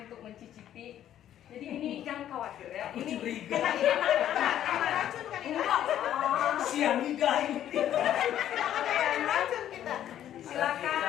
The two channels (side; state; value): right; quieter; 11.2 dB